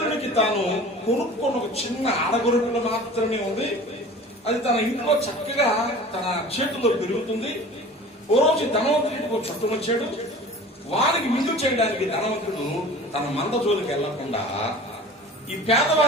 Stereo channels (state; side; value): normal; both; correlation 0.41